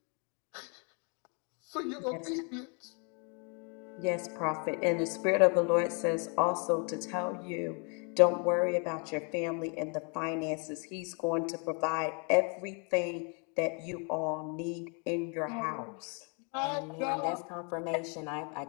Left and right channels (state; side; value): quieter; right; 36.5 dB